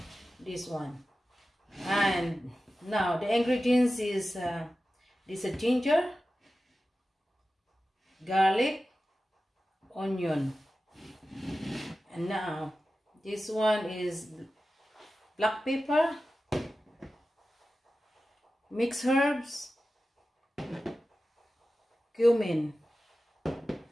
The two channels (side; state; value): both; normal; correlation 0.94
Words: this one. And now the ingredients is this is ginger, garlic, onion, and now this one is black pepper, mixed herbs, cumin.